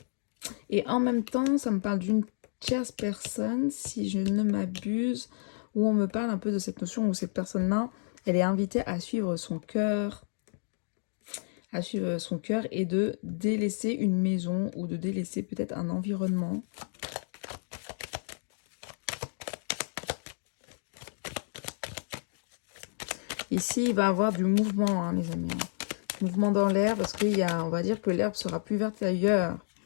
en même temps, ça me parle d'une tierce personne, si je ne m'abuse, où on me parle un peu de cette notion où cette personne-là, elle est invitée à suivre son cœur, et de délaisser une maison ou de délaisser peut-être un environnement. Ici, il va y avoir du mouvement, hein, les amis. Mouvement dans l'air, parce on va dire que l'herbe sera plus verte ailleurs.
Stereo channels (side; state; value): right; silent; digital silence